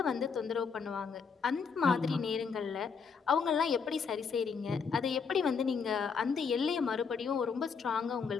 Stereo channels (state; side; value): quieter; right; 5.8 dB